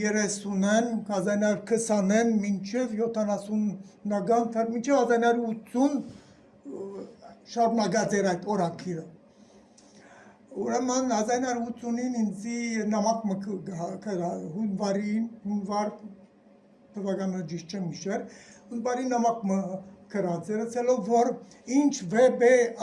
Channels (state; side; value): identical; both; correlation 1.00